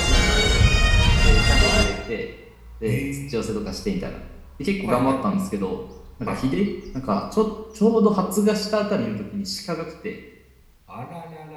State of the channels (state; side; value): identical; both; correlation 1.00